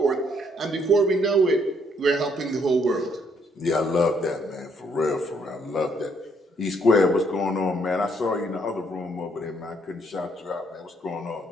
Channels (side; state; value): both; normal; correlation 0.70